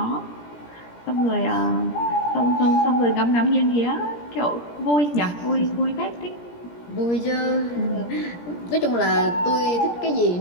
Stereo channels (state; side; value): late; right; 17 ms